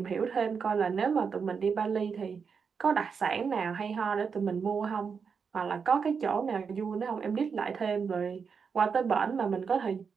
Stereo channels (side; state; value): left; quieter; 6.0 dB